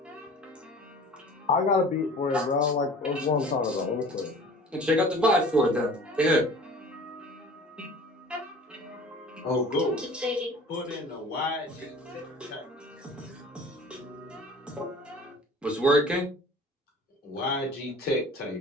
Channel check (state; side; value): normal; both; correlation 0.44